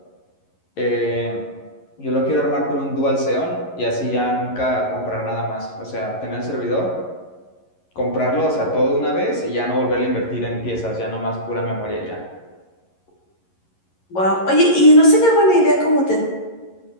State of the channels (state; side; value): late; right; 11 ms